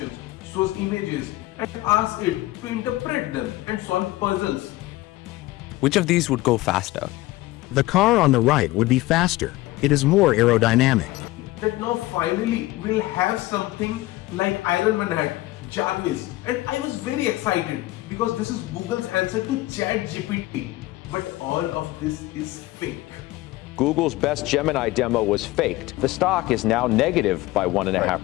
shows images and asks it to interpret them and solve puzzles. Which of these would go faster? The car on the right would be faster. It is more aerodynamic. That now finally we'll have something like Iron Man had, Jarvis, and I was very excited because this is Google's answer to ChatGPT. But all of this is fake. Google's best Gemini demo was faked. The stock is now negative by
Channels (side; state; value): right; quieter; 18.5 dB